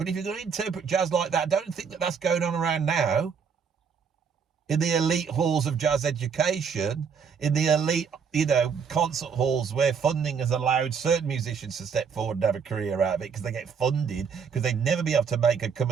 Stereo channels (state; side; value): quieter; left; 6.4 dB